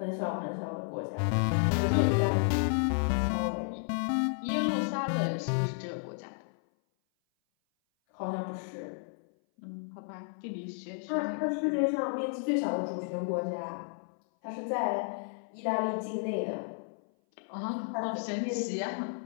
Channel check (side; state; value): right; silent; 56 dB below the other